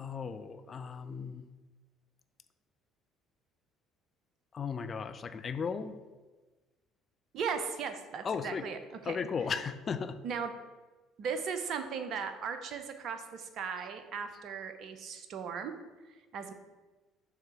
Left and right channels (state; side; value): normal; both; correlation 0.59